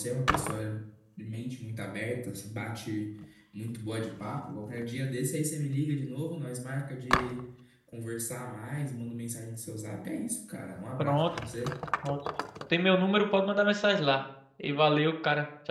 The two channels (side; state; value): both; identical; correlation 1.00